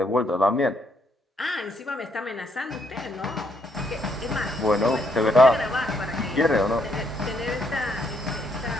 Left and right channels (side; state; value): both; normal; correlation 0.73